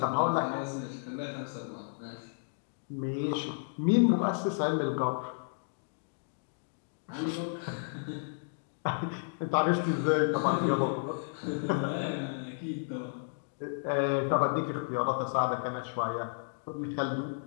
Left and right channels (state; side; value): silent; right; digital silence